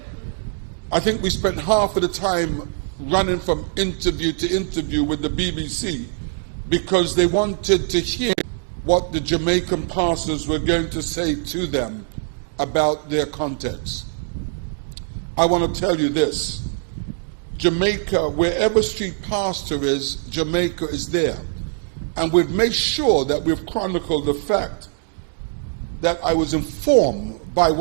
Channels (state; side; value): silent; left; digital silence